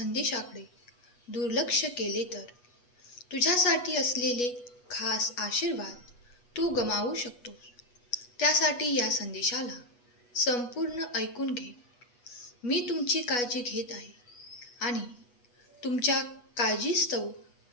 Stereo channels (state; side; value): late; right; 8.2 ms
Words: दुर्लक्ष केले तर तुझ्यासाठी असलेले खास आशीर्वाद तू गमावू शकतोस. त्यासाठी या संदेशाला संपूर्ण ऐकून घे. मी तुमची काळजी घेत आहे आणि तुमच्या काळजीस्तव